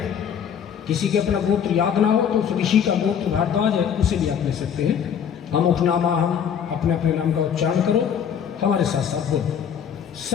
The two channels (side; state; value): right; quieter; 8.1 dB